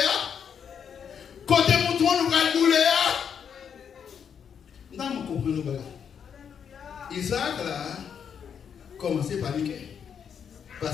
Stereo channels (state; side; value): quieter; right; 7.5 dB